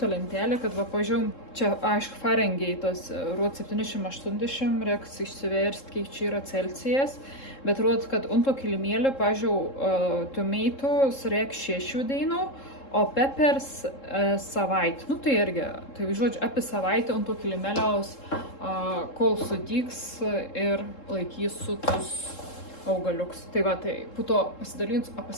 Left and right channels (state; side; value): late; right; 3.7 ms